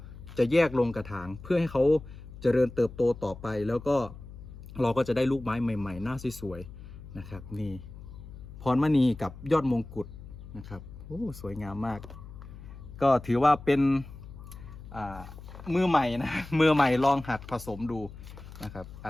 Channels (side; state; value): left; noise; hum, 15 dB below the sound